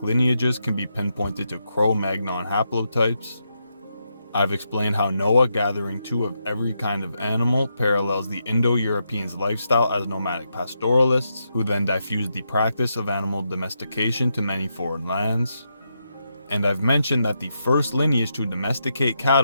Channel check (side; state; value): both; inverted; correlation -0.83